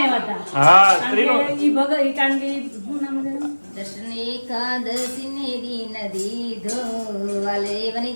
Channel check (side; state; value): both; inverted; correlation -1.00